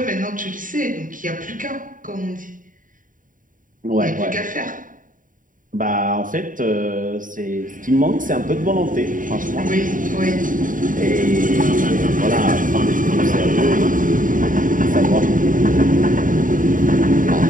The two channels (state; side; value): late; left; 0.39 ms